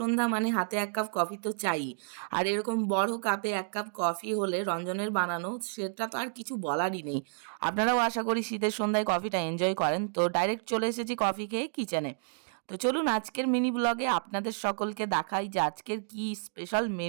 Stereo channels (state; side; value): silent; left; digital silence